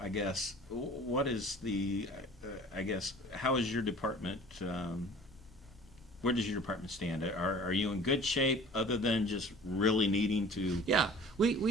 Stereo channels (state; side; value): noise; left; rumble, 24 dB below the sound